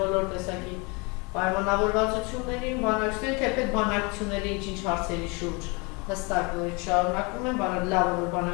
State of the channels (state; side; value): quieter; right; 29.3 dB